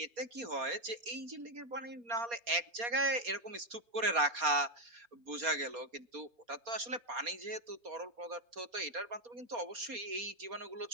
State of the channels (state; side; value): late; left; 4.2 ms